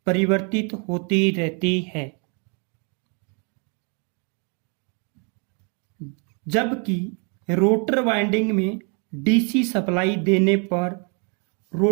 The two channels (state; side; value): quieter; left; 36.8 dB